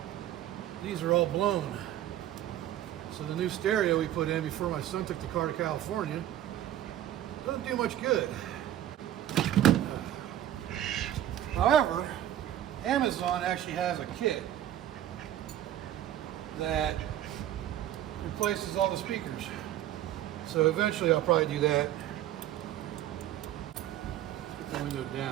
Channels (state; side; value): quieter; left; 12.2 dB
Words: these are all blown. So the new stereo we put in before my son took the car to California doesn't do much good. However, Amazon actually has a kit that replaces all the speakers. So eventually I'll probably do that. Put the window